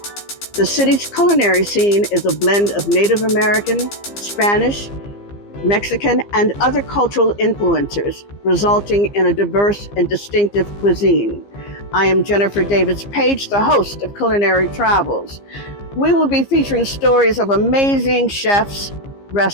The city's culinary scene is a blend of Native American, Spanish, Mexican, and other cultural influences, resulting in a diverse and distinctive cuisine. I am Jennifer Davis-Paige, the host of Culinary Travels. We will be featuring stories of amazing chefs,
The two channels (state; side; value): late; right; 15 ms